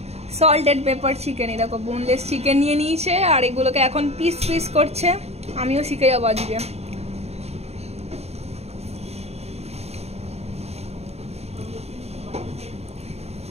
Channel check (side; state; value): left; late; 0.30 ms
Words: Salted pepper chicken. এই দেখো বোনলেস চিকেন নিয়ে নিয়েছে আর এগুলোকে এখন পিস পিস করছে। আমিও শিখে যাবো আজকে।